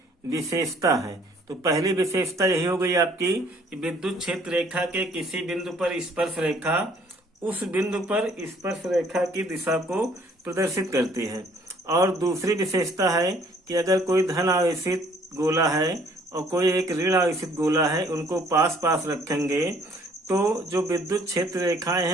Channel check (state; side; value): normal; both; correlation 0.60